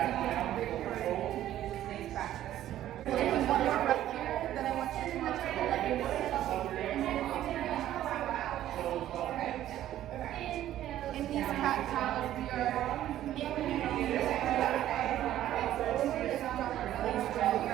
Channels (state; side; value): quieter; left; 12.7 dB